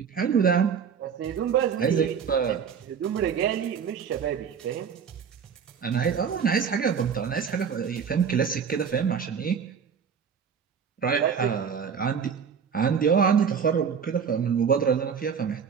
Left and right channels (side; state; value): left; quieter; 6.9 dB